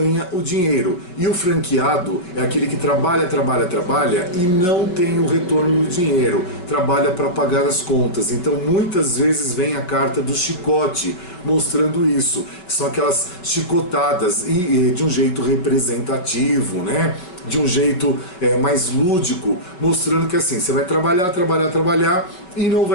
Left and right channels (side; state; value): right; late; 5.4 ms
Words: o dinheiro. E o franqueado é aquele que trabalha e não tem o retorno do dinheiro, trabalha para pagar as contas. Então muitas vezes vem a carta do chicote mostrando isso, que são aquelas chicotadas e de um jeito representativo, né? De um jeito mais lúdico, mostrando que assim, você vai trabalhar e não